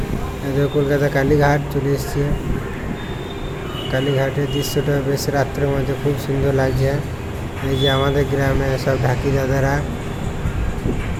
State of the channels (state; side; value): identical; both; correlation 1.00